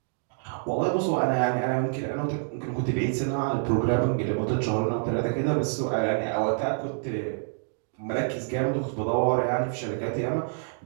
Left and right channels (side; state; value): left; silent; digital silence